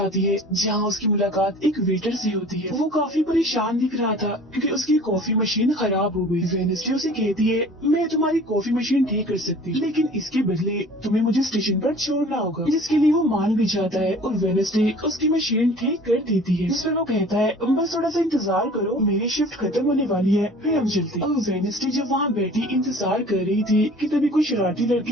है है जहाँ उसकी मुलाकात एक वेटर से होती है। वो काफी परेशान दिख रहा था क्योंकि उसकी कॉफी मशीन खराब हो गई। वेडनेसडे उसे कहती है, मैं तुम्हारी कॉफी मशीन ठीक कर सकती, लेकिन इसके बदले तुम्हें मुझे स्टेशन पर छोड़ना होगा, जिसके लिए वो मान भी जाता है और वेडनेसडे उसकी मशीन ठीक कर देती है। जिस पर वो कहता है, बस थोड़ा सा इंतजार करो, मेरी शिफ्ट खत्म होने वाली है, फिर हम चलते। अब वेडनेसडे जब वहाँ बैठी इंतजार कर रही थी कि तभी कोई शरारती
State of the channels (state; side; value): normal; both; correlation 0.46